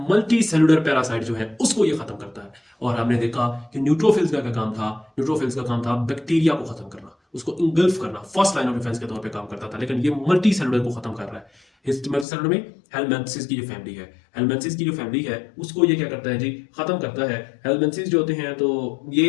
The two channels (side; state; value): right; drops out; at 12.2 s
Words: मल्टी सेलुलर पैरासाइट जो है उसको ये खत्म करता है। और हमने देखा कि न्यूट्रोफिल्स का क्या काम था, न्यूट्रोफिल्स का काम था बैक्टीरिया को खत्म करना, उसको इंगल्फ करना, फर्स्ट लाइन ऑफ डिफेंस के तौर पे काम करता था। लेकिन ये मल्टी सेलुलर को खत्म कर रहा है। मल्टी सेलुलर में हेलमेंथिस की जो फैमिली है, हेलमेंथिस की जो फैमिली है उसको ये क्या करता है जी, खत्म करता है। हेलमेंथिस जो होते हैं तो